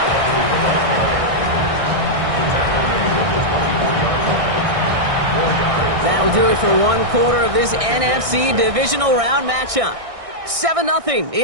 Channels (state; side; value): late; left; 1.6 ms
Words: That'll do it for 1 quarter of this NFC divisional round matchup. 7-0